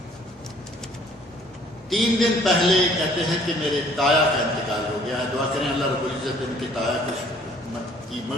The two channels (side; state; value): both; normal; correlation 0.58